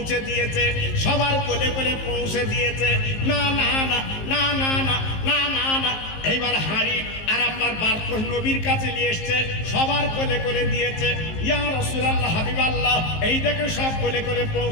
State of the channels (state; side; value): late; right; 19 ms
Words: দিয়েছে, সবার কোলে কোলে পৌঁছে দিয়েছে। না না না না না না না না না, এইবার হাঁড়ি আর আপনার বারকোশ নবীর কাছে নিয়ে এসছে, সবার কোলে কোলে দিয়েছে। ইয়া রাসূলুল্লাহ, হাবিবাল্লাহ, এই দেখে সব কোলে কোলে